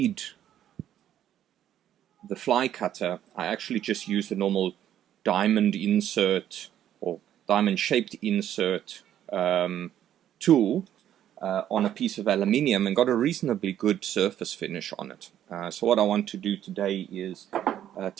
the fly cutter, I actually just used a normal diamond insert or diamond shaped insert tool on a piece of aluminium and got a reasonably good surface finish on it. So what I want to do today is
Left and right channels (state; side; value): quieter; left; 11.0 dB